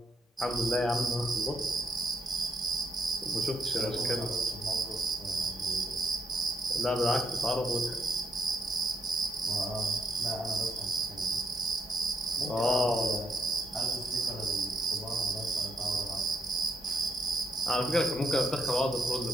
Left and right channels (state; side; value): normal; both; correlation 0.78